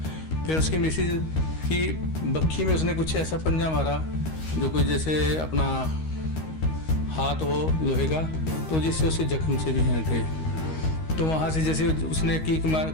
फिर उसकी मिसिज की बक्खी में उसने कुछ ऐसा पंजा मारा जो कोई जैसे अपना हाथ हो लोहे का, तो जिससे उसे जख्म से भी हैं थे। तो वहाँ से जैसे उसने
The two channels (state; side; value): late; right; 13 ms